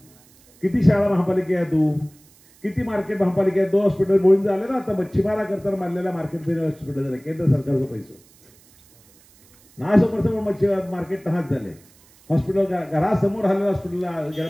किती शाळा महापालिका आहे तू, किती मार्केट महापालिका आहे. 2 हॉस्पिटल बोळून झाले ना आता मच्छीमारा करताना बांधलेल्या मार्केट हॉस्पिटल झाले केंद्र सरकारचं पैसे ना समोर मच्छी मार्केट तहाच झाले. हॉस्पिटल घरासमोर आलेलं हॉस्पिटलला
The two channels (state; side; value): noise; right; hiss, 28 dB below the sound